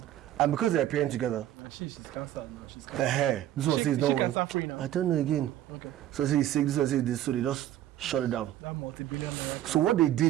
And because they're appearing together, She's cancelled now. She's the cancelled. hair, this one says no She one. cancer free now. I don't know again. Okay. So I say he's sick, this one says this, so they just shut it down. That multi-billion naira. So what they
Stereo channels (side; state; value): left; quieter; 12.7 dB